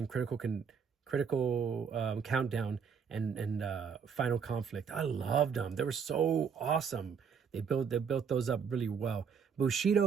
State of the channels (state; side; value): quieter; left; 6.5 dB